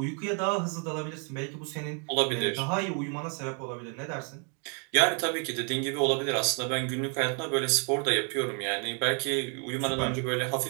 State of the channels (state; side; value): quieter; left; 39.9 dB